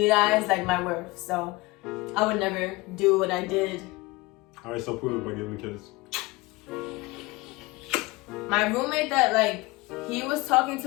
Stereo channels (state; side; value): quieter; right; 21.9 dB